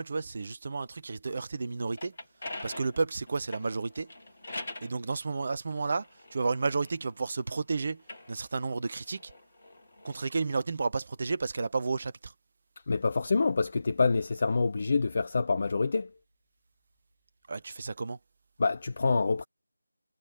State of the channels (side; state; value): both; inverted; correlation -0.90